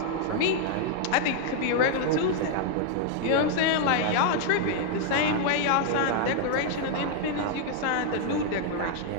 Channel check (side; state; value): both; different; correlation 0.00